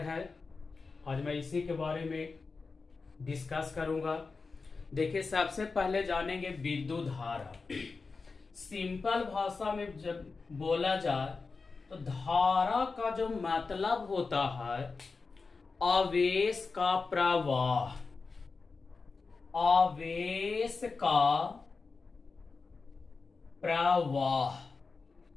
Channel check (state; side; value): quieter; right; 4.3 dB